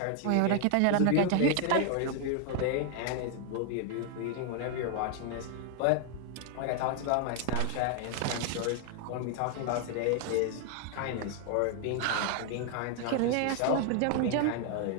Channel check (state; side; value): different; both; correlation 0.00